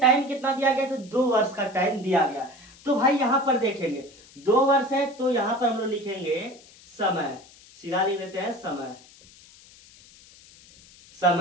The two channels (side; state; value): left; noise; hiss, 24 dB below the sound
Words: कितना दिया गया, तो 2 वर्ष का टाइम दिया गया। तो भाई यहाँ पर देखेंगे 2 वर्ष है, तो यहाँ पर हम लोग लिखेंगे समय, सीधा लिख देते हैं समय।